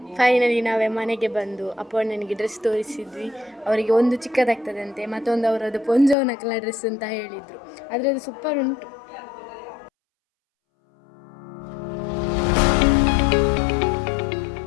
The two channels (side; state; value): right; drops out; at 6.2 s